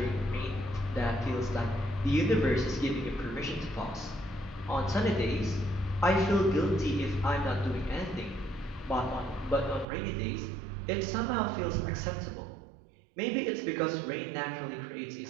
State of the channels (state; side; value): drops out; left; at 9.9 s